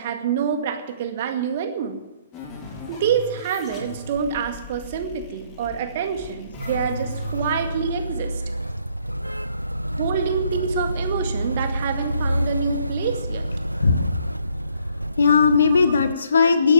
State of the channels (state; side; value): inverted; both; correlation -0.67